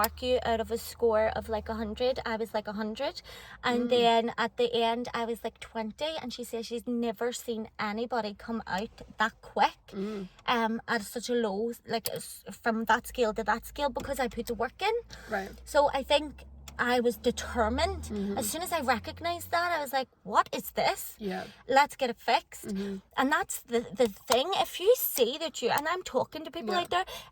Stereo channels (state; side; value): identical; both; correlation 1.00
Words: you out of a score of like 100. I was like 100. And then at the end, I was like 20. And she says she's never seen anybody come out that quick at such a low, like from that scale to that scale, because I put the work in. So I think I was determined. As soon as I recognized that, I was like, what is this? Let's get it fixed. And that's the thing. If you see that you, and I'm talking to people out there,